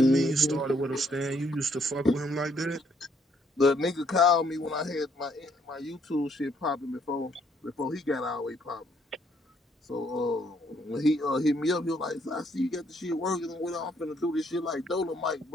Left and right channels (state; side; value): normal; both; correlation 0.69